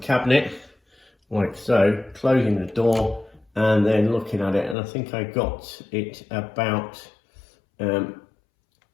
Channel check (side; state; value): right; drops out; at 4.8 s